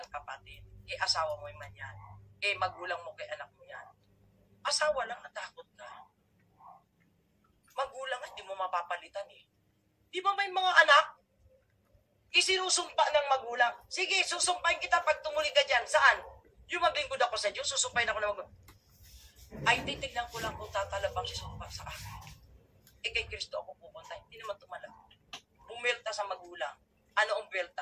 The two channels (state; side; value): identical; both; correlation 1.00